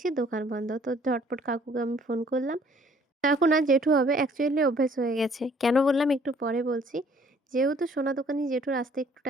দোকান বন্ধ। তো ঝটপট কাকুকে আমি ফোন করলাম। এখন আর জেঠু হবে, অ্যাকচুয়ালি অভ্যেস হয়ে গেছে। কেন বললাম একটু পরে বলছি। যেহেতু সোনা দোকানি জেঠুর আসতে একটু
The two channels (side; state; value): both; normal; correlation 0.59